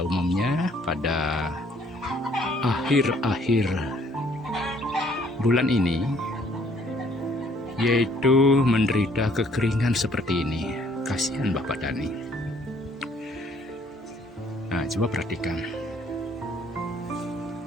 umumnya pada akhir-akhir bulan ini yaitu menderita kekeringan seperti ini. Kasihan Bapak Tani. Nah, coba perhatikan.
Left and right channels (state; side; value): normal; both; correlation 0.62